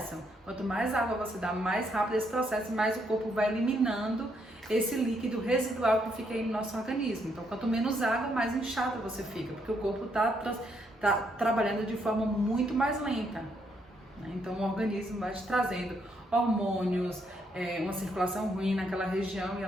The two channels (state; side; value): normal; both; correlation 0.74